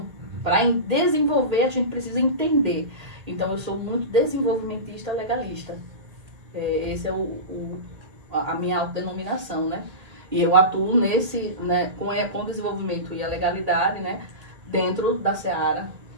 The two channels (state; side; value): late; left; 1.8 ms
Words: para desenvolver, a gente precisa entender. Então, eu sou muito desenvolvimentista legalista. Esse é a minha autodenominação, né? E eu atuo nesse, né, com o desenvolvimento e a legalidade, né, dentro da seara